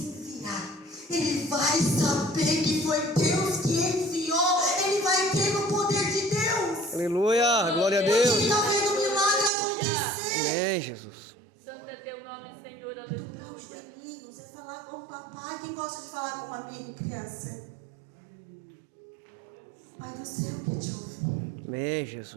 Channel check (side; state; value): left; drops out; at 9.5 s